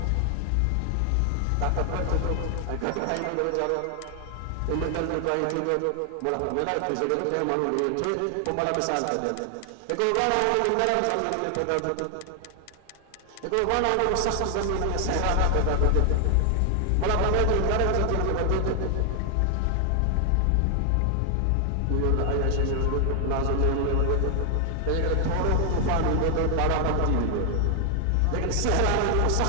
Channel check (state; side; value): different; both; correlation 0.00